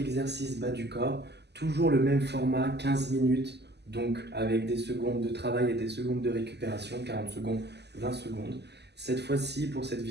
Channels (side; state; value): left; late; 0.49 ms